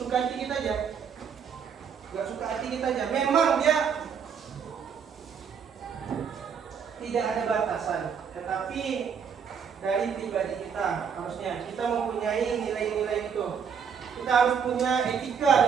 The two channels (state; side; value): quieter; left; 7.0 dB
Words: hati kita aja. Gak suka hati kita aja. Memang dia tidak ada batasan, tetapi dari pribadi kita harusnya kita mempunyai nilai-nilai itu. Kita harus punya etika